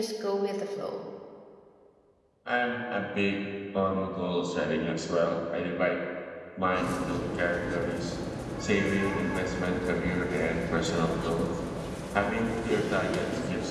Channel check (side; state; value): both; identical; correlation 1.00